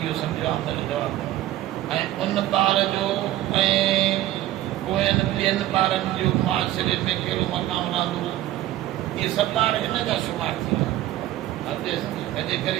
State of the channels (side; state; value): left; quieter; 14.4 dB